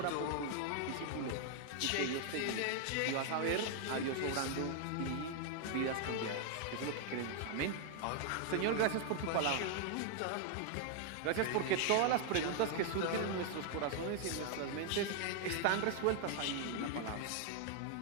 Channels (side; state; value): both; different; correlation 0.00